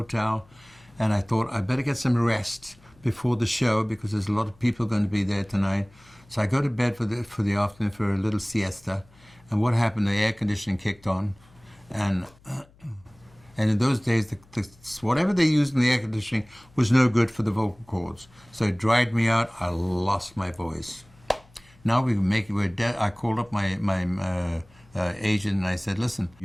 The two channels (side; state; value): left; noise; hum, 28 dB below the sound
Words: and I thought I better get some rest before the show because there's a lot of people going to be there tonight. So I go to bed for the afternoon for a little siesta. And what happened? The air conditioning kicked on, and in those days, whatever they used in the air conditioning was no good for the vocal cords. So it dried me out. I lost my voice. Now I called up my agent, and I said, "Listen,